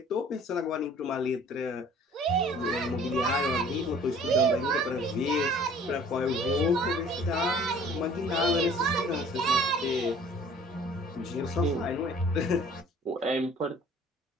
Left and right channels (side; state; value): both; normal; correlation 0.51